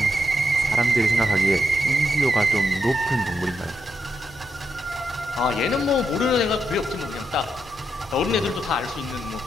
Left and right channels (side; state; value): both; normal; correlation 0.83